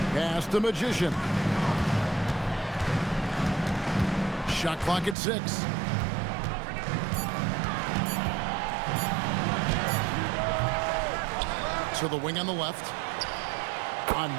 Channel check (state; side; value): drops out; left; at 5.2 s